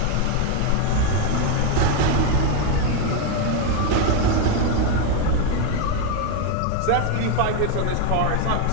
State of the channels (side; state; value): both; different; correlation 0.02